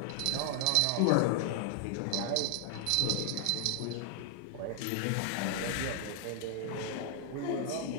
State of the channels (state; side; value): different; both; correlation 0.00